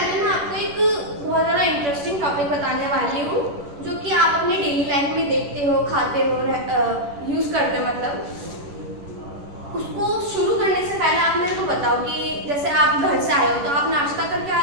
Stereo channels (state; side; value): late; left; 10 ms